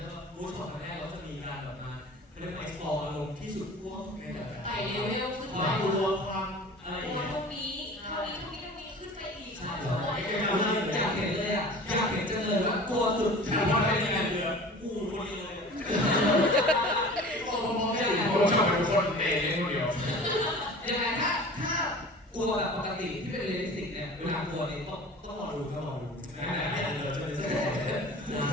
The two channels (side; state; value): both; normal; correlation 0.41